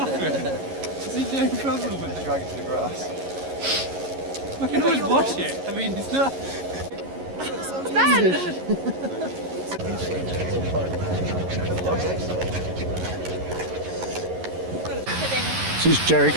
There's no problem with it. drag it to the grass. I can always wash it. I mean, it's not... This is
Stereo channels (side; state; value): left; late; 11 ms